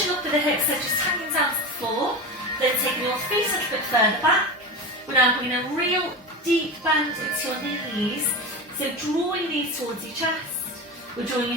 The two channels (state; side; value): normal; both; correlation 0.25